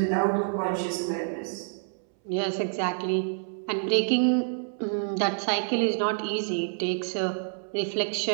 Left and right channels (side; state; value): left; silent; 60 dB below the other